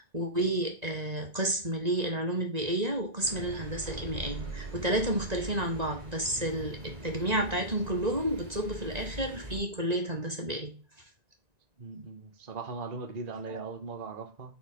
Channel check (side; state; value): left; late; 1.9 ms